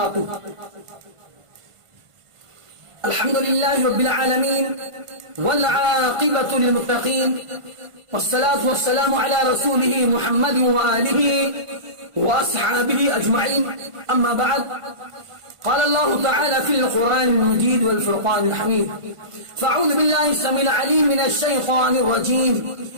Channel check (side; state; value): left; late; 1.5 ms